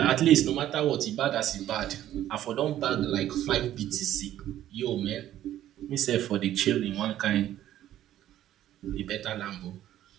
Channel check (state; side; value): quieter; left; 12.5 dB